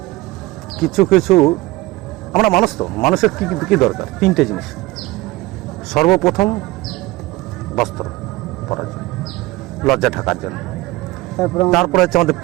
কিছু কিছু আমরা মানুষ তো, মানুষের কি কি দরকার? তিনটে জিনিস। সর্বপ্রথম বস্ত্র পরার জন্য, লজ্জা ঢাকার জন্য। তারপরে হচ্ছে আমাদের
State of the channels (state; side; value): quieter; left; 19.7 dB